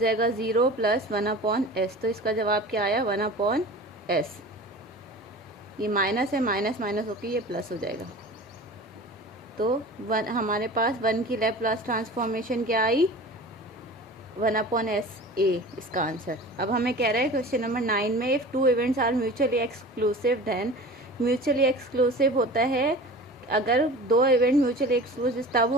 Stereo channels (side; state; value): both; normal; correlation 0.38